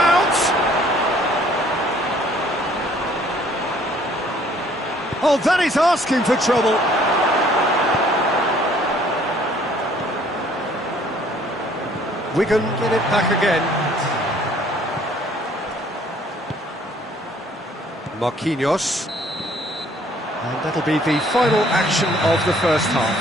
Oh, that is asking for trouble. Wigan get it back again. Marquinhos. And that'll be the final action of the first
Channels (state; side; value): normal; both; correlation 0.59